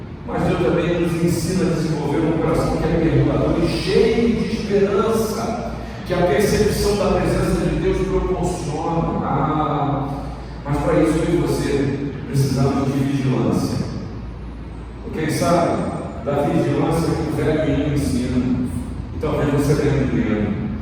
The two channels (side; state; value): both; identical; correlation 1.00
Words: Mas Deus também nos ensina a desenvolver um coração que é perdoador e cheio de esperança, que a percepção da presença de Deus proporciona. Mas para isso eu e você precisamos de vigilância. Quem sabe da vigilância que o velho menino ensina, e talvez você lembre